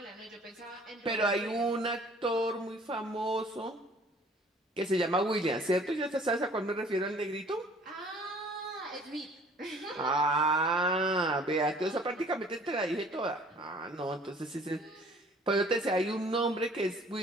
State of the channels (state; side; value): normal; both; correlation 0.54